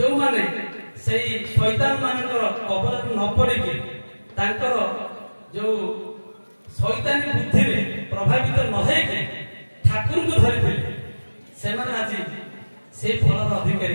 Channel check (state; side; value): inverted; both; correlation -1.00